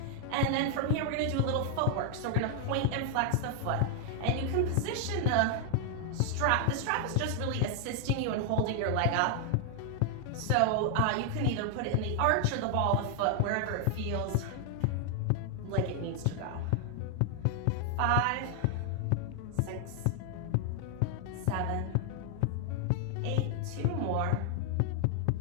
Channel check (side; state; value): both; different; correlation 0.00